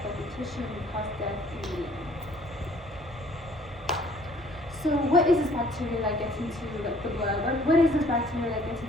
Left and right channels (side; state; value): both; normal; correlation 0.57